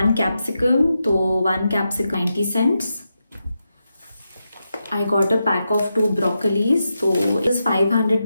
capsicum. So 1 capsicum 90 cents. I got a pack of 2 broccolis. So it was 500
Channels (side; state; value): both; inverted; correlation -0.87